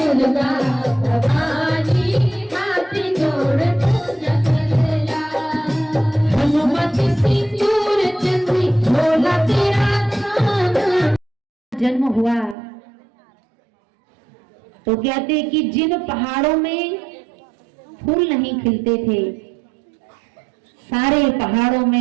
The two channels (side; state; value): left; drops out; at 12.6 s